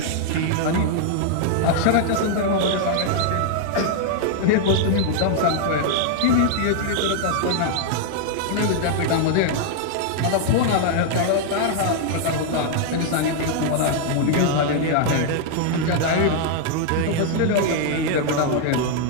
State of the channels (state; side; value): different; both; correlation 0.00